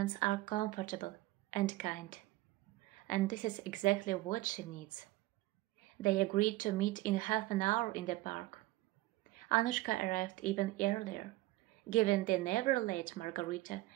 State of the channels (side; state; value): left; quieter; 18.1 dB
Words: are comfortable and kind, and this is exactly what she needs. They agreed to meet in half an hour in the park. Anushka arrived even earlier, giving the never-late Margarita